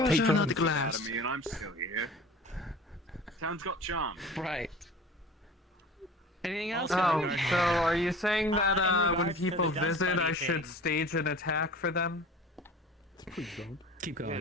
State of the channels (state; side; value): normal; both; correlation 0.41